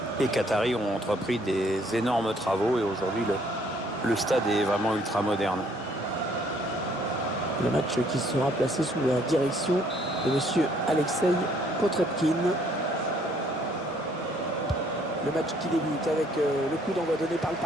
les Qataris ont entrepris des énormes travaux et aujourd'hui le stade est vraiment ultra moderne. Le match qui sera placé sous la direction de monsieur Alexei Potrepkin. Le match qui débute avec le coup d'envoi donné par le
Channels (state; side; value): normal; both; correlation 0.64